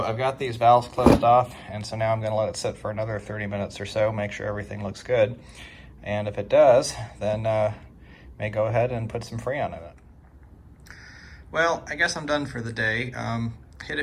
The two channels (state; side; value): identical; both; correlation 1.00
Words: I've got these valves closed off, and so now I'm going to let it sit for another 30 minutes or so, make sure everything looks good. And if it does, then may go ahead and put some Freon in it. Well, I guess I'm done for the day. Hit